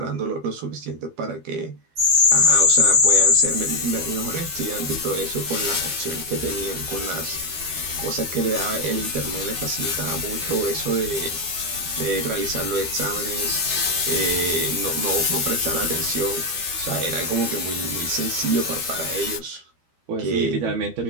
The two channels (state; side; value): late; left; 12 ms